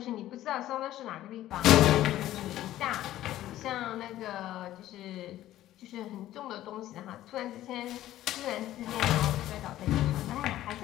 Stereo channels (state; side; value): quieter; right; 13.9 dB